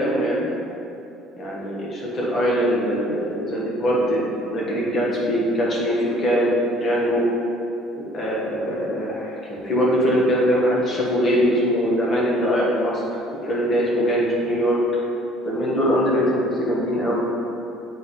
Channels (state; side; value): normal; both; correlation 0.56